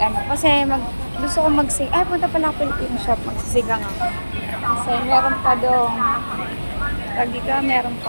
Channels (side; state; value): both; inverted; correlation -1.00